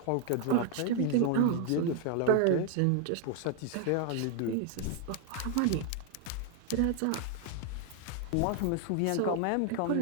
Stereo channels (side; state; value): both; different; correlation 0.00